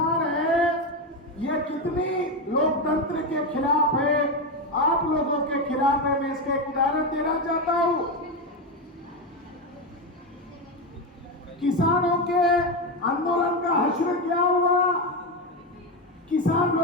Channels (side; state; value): both; normal; correlation 0.12